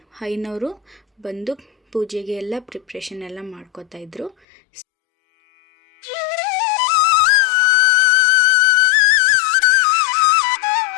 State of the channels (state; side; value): drops out; right; at 4.4 s